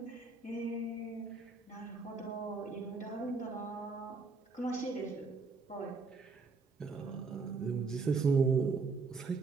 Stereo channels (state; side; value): quieter; left; 4.3 dB